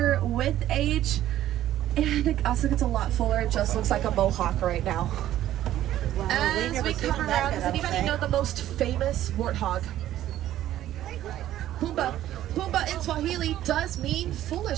with age, and it also gets a lot fuller. It just looks like a mohawk right now. As we come around, does anybody know the most famous warthog? Pumbaa. Pumbaa in Swahili does mean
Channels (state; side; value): quieter; left; 12.9 dB